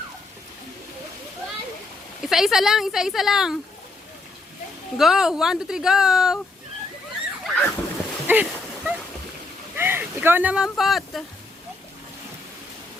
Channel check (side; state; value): right; quieter; 3.1 dB